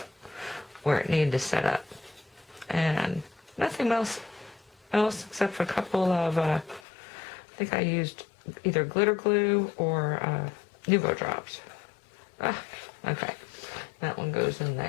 where it needed to set up. And nothing else except for a couple of, I think I used either glitter glue or Nuvo drops. Okay, that one goes in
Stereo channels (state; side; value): drops out; right; at 6.8 s